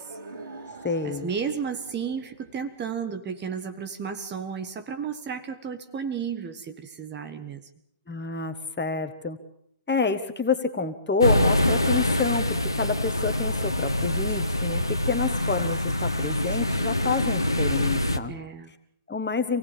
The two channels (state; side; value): inverted; both; correlation -0.49